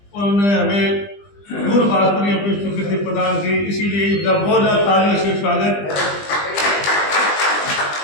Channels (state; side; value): late; right; 20 ms